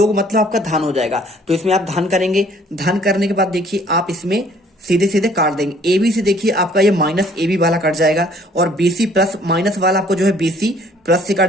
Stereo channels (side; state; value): both; normal; correlation 0.58